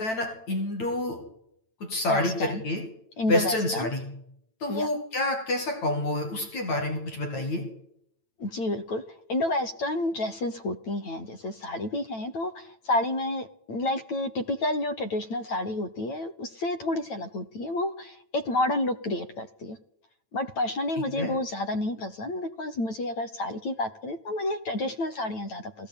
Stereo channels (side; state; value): right; late; 9.0 ms